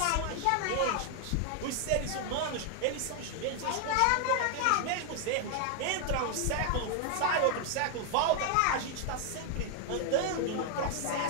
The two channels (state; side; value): different; both; correlation 0.00